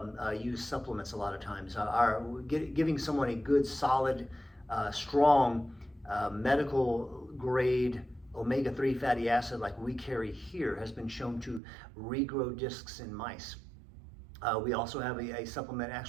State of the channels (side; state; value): left; drops out; at 11.6 s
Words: use supplements a lot of times. Giving someone a good, solid, strong, medical grade omega-3 fatty acid like we carry here has been shown to regrow discs in mice. We also have a supplement